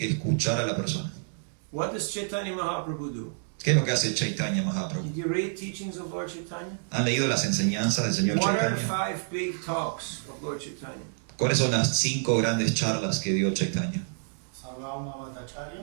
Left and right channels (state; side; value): silent; left; digital silence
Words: escuchar a la persona. What does Chaitanya Mahaprabhu do? ¿Qué es lo que hace Chaitanya Mahaprabhu? Did you read teachings of Lord Chaitanya? ¿Han leído las enseñanzas del señor What are the Chaitanya? 5 big talks of Lord Chaitanya? ¿Cuáles son las 5 grandes charlas que dio Chaitanya? Sarvabhauma